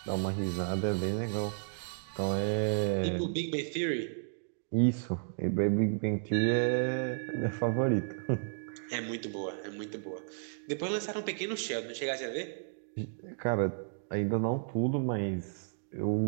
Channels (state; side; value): silent; left; digital silence